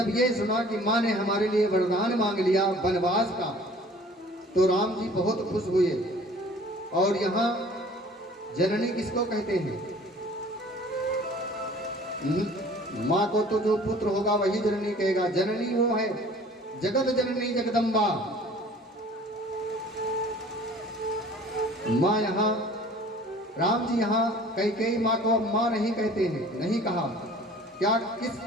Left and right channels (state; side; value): normal; both; correlation 0.50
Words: ये सुना कि माँ ने हमारे लिए वरदान मांग लिया वनवास का, तो राम जी बहुत खुश हुए। और यहाँ जननी किसको कहते हैं? माँ को तो जो पुत्र होगा वही जननी कहेगा। जननी वो है जगत जननी जगदम्बा। माँ यहाँ राम जी यहाँ कैकेयी माँ को अब माँ नहीं कहते हैं, नहीं कहा। क्या किस